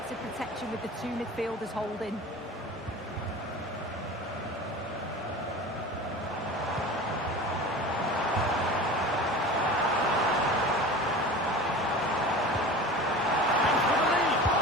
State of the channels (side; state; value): both; normal; correlation 0.35